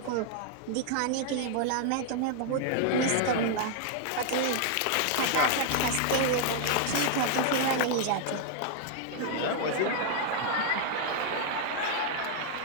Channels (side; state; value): both; different; correlation 0.00